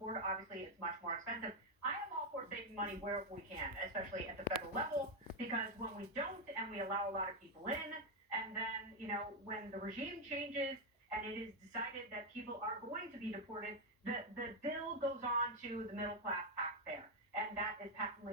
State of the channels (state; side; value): normal; both; correlation 0.03